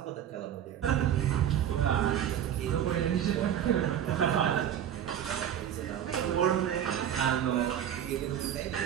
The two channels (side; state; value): left; quieter; 10.0 dB